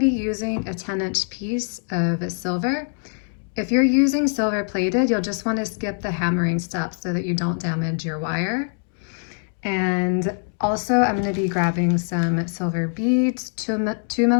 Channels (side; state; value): right; silent; 58 dB below the other